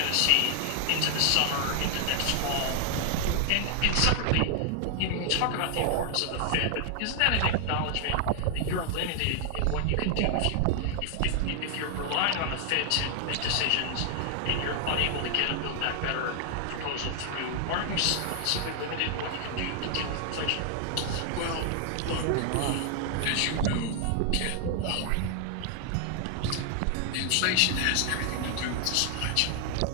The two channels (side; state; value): both; different; correlation 0.00